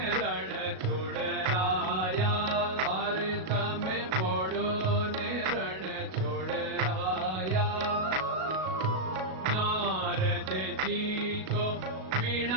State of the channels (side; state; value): left; late; 37 ms